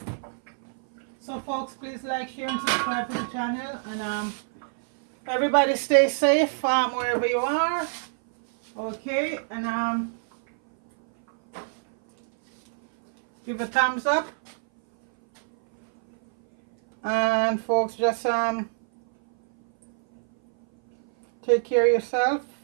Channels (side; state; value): left; silent; 59 dB below the other